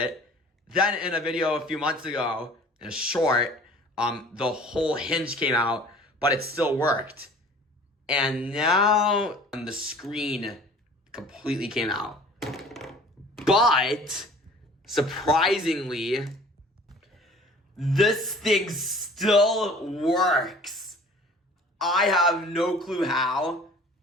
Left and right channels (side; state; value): both; normal; correlation 0.48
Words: Then in a video a few months ago, in a short, the whole hinge came out, but it still worked. And now the screen completely came out. But surprisingly, this thing still works. I have no clue how,